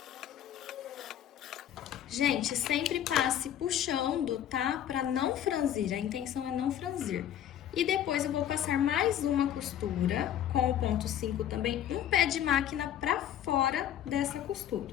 Gente, sempre passe puxando, tá? Pra não franzir, a intenção é não franzir. E depois eu vou passar mais uma costura com o ponto 5 também, um pé de máquina pra fora dessa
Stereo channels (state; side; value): quieter; right; 10.7 dB